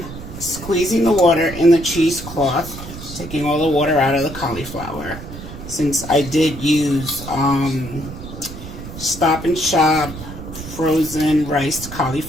squeezing the water in the cheesecloth, taking all the water out of the cauliflower. Since I did use Stop and Shop frozen riced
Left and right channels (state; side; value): noise; right; rumble, 12 dB below the sound